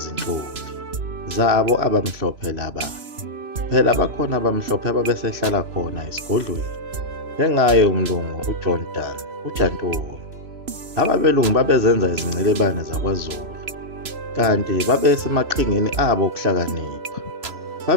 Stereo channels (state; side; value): late; left; 3.0 ms